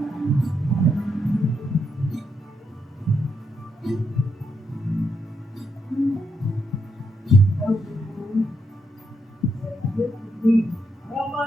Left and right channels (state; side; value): normal; both; correlation 0.79